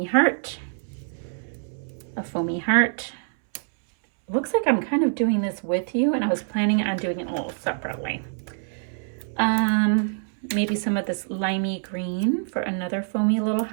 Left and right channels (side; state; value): left; silent; 62 dB below the other